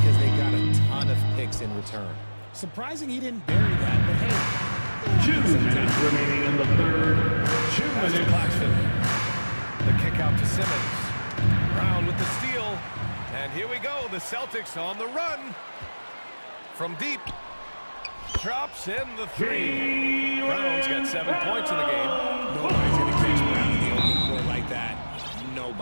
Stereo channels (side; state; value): both; inverted; correlation -1.00